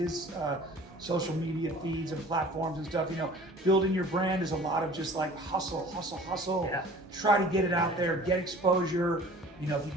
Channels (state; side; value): normal; both; correlation 0.46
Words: social media feeds and platforms and stuff. Building your brand is a lot of just like hustle. Yeah. Try to get it out there, get exposure. If you